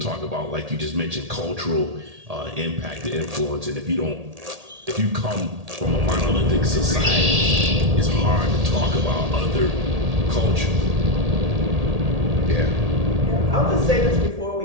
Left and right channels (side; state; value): left; late; 1.8 ms